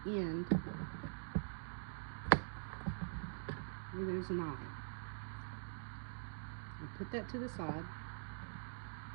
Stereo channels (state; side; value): silent; left; digital silence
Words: end where there's an eye. I'll put that to the side.